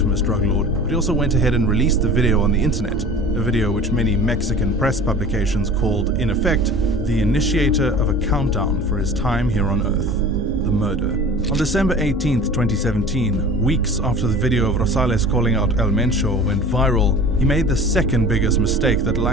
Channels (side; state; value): both; normal; correlation 0.41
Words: drug lord, but he also went ahead and released the video on the internet, a video which many Mexican press publications called, in effect, the initiator of a countdown for his time here on Earth, the murder. On December 18th, 2017, weeks after the video of Rosales calling out El Mencho went viral, he made the second biggest mistake that